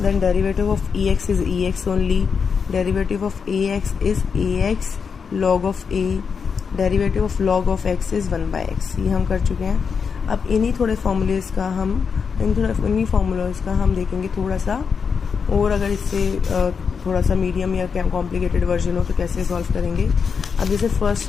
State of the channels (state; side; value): quieter; right; 6.0 dB